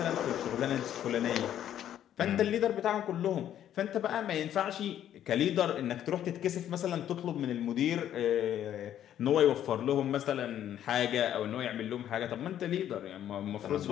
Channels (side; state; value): right; quieter; 10.9 dB